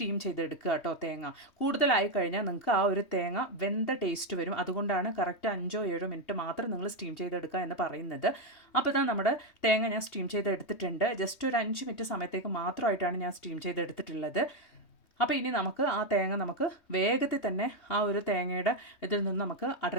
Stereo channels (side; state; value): right; late; 3.2 ms